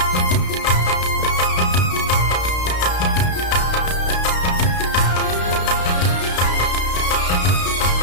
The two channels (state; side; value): late; right; 32 ms